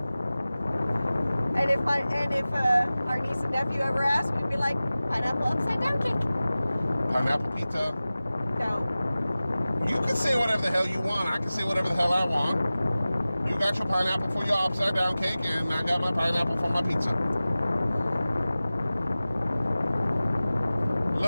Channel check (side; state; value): both; inverted; correlation -0.97